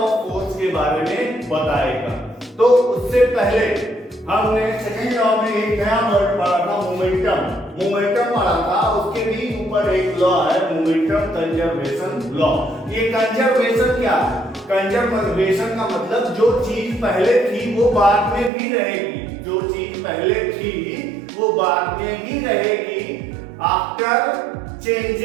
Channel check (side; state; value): left; drops out; at 18.5 s